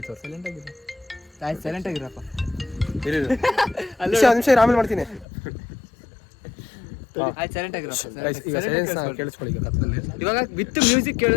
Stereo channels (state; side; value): drops out; right; at 5.2 s